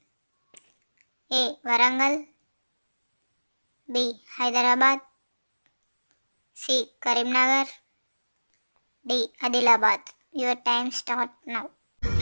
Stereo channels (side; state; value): both; inverted; correlation -1.00